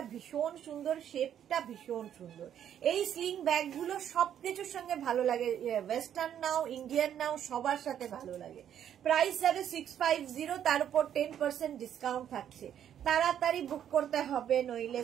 ভীষণ সুন্দর, শেপটা ভীষণ সুন্দর। এই স্লিং ব্যাগ গুলো সবকিছুর সঙ্গে ভালো লাগে, ওয়েস্টার্ন নাও ইন্ডিয়ান নাও সবার সাথে ভালো লাগে। প্রাইস যাবে 650, তার উপর 10% ডিসকাউন্ট থাকছে। তাড়াতাড়ি বুক করতে হবে, নইলে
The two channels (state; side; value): quieter; left; 9.8 dB